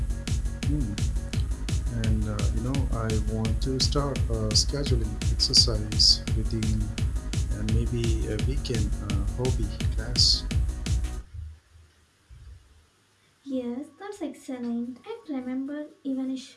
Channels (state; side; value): identical; both; correlation 1.00